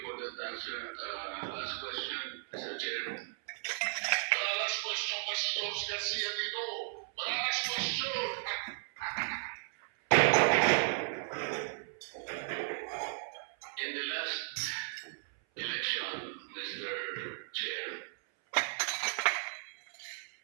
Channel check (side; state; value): left; silent; 54 dB below the other